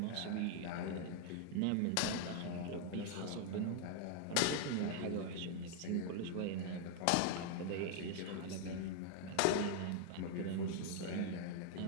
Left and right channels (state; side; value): different; both; correlation 0.00